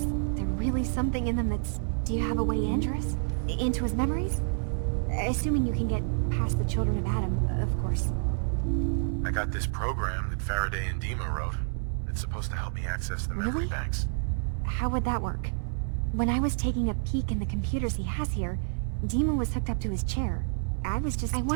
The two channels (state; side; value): silent; left; 59 dB below the other